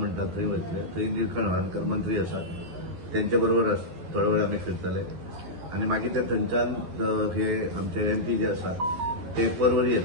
थंय वयतले थंय निळकंठ हळर्णकर मंत्री आसात तेंचे बरोबर थोडे वेळ आमी फिरतले आणि मागीर ते थंयच्यान हे आमचे MP जे आसात ते परवरी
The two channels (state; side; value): late; left; 12 ms